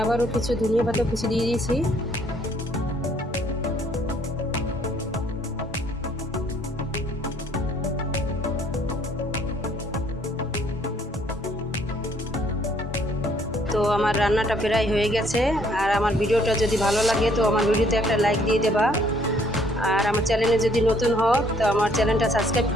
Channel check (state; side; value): normal; both; correlation 0.64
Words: আবারও কিছু ধনিয়া পাতা কুচি দিয়ে দিয়েছি। তো আমার রান্নাটা প্রায় হয়ে গেছে। আর আমার ভিডিওটা যদি ভালো লাগে তো আমার ভিডিওতে একটা লাইক দিয়ে দেবা। আর আমার চ্যানেলে যদি নতুন হও তো আমার চ্যানেলটা সাবস্ক্রাইব